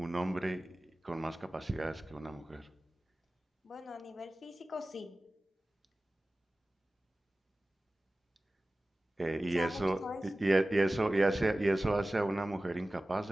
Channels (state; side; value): normal; both; correlation 0.97